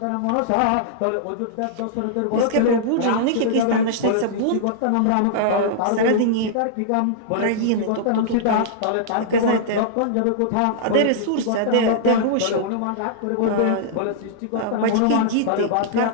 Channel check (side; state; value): both; different; correlation -0.02